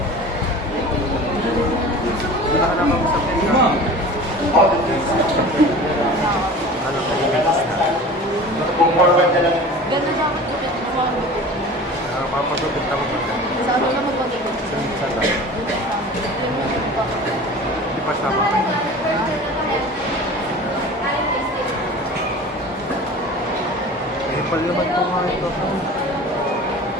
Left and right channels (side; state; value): both; normal; correlation 0.39